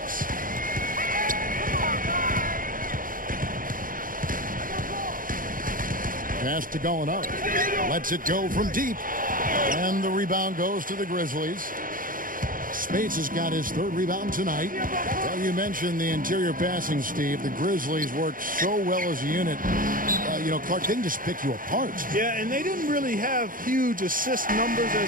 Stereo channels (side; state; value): left; late; 0.40 ms